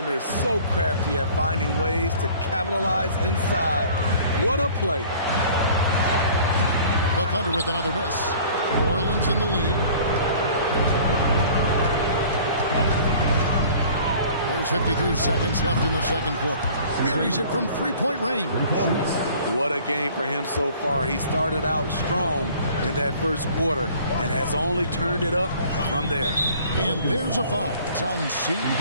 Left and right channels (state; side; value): inverted; both; correlation -0.49